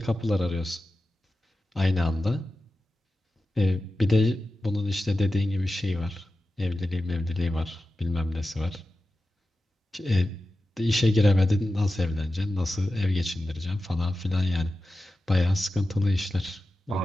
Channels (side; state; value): both; normal; correlation 0.93